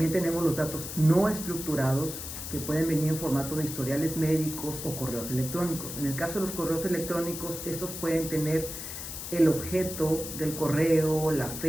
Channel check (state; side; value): noise; left; hiss, 8 dB below the sound